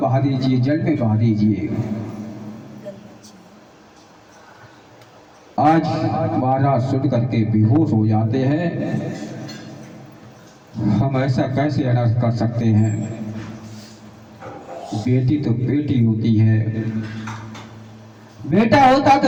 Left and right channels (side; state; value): both; identical; correlation 1.00